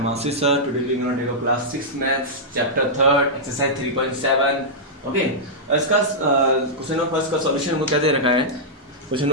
Ashish sir. Today we are going to take a class 6 maths chapter 3rd exercise 3.7. Okay, इसका question number first का solution हमको क्या दे रखा है? Question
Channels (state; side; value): normal; both; correlation -0.10